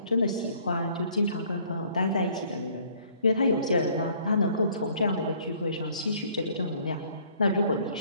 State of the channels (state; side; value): inverted; both; correlation -0.59